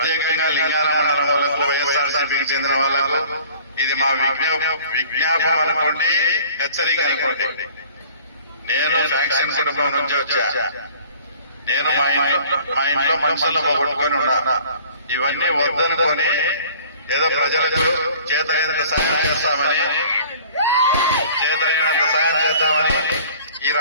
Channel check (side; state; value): both; inverted; correlation -0.49